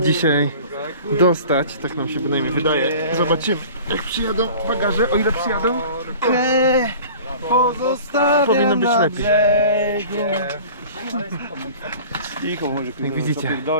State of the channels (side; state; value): both; inverted; correlation -0.43